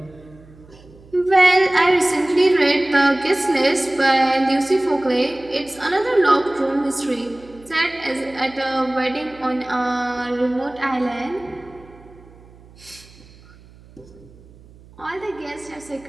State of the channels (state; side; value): noise; right; hum, 24 dB below the sound